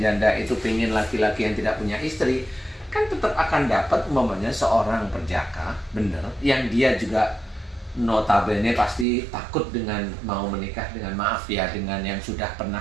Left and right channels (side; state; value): left; drops out; at 9.1 s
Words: janda itu pingin laki-laki yang tidak punya istri, kan tetap akan dapat umpamanya seorang perjaka, bener, yang dia juga notabene pasti takut dengan mau menikah dengan, maaf ya, dengan yang sudah